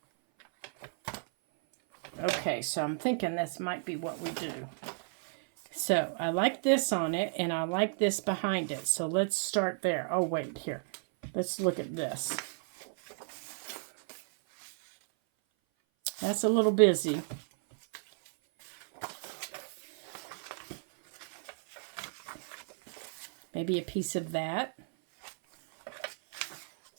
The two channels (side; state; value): left; silent; 56 dB below the other